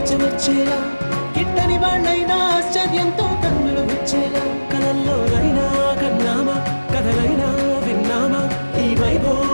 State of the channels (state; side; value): inverted; both; correlation -1.00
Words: చెమర్చేలా గిట్టని వాళ్ళైనా ఆశ్చర్యంతో కన్నులు వచ్చేలా కలల్లోనైనా కన్నామా కథలైనా విన్నామా ఈ